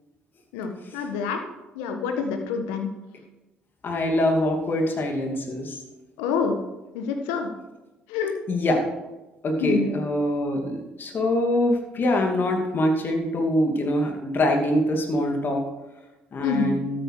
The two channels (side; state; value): both; normal; correlation 0.68